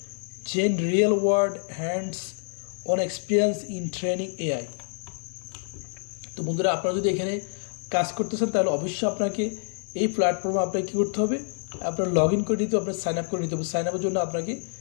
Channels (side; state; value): right; silent; digital silence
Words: gain real world hands-on experience in training AI। তো বন্ধুরা, আপনারা যদি এখানে কাজ করতেছেন তাহলে অবশ্যই আপনাকে এই প্ল্যাটফর্মে আপনাকে কী করতে হবে, আপনার লগ ইন করে নিতে হবে, আপনার সাইন আপ করে নিতে হবে। সাইন আপের জন্য আপনাকে